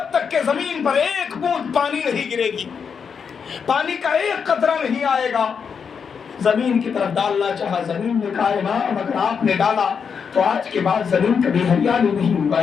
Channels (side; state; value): right; quieter; 6.4 dB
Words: تک کے زمین پر ایک بوند پانی نہیں گرے گی، پانی کا ایک قطرہ نہیں آئے گا۔ زمین کی طرف ڈالنا چاہا، زمین نے کہا امام اگر آپ نے ڈالا تو آج کے بعد زمین کبھی ہریالی نہیں